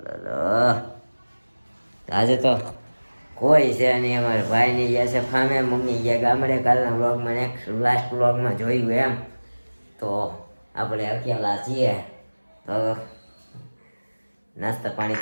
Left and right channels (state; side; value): inverted; both; correlation -1.00